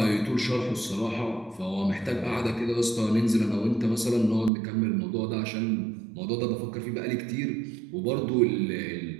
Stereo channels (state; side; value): drops out; left; at 4.5 s